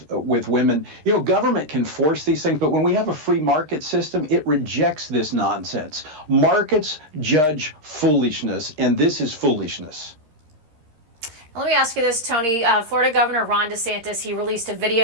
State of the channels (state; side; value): late; left; 13 ms